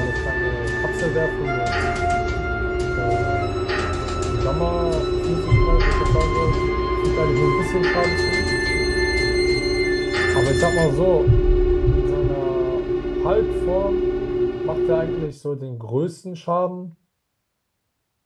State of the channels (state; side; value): identical; both; correlation 1.00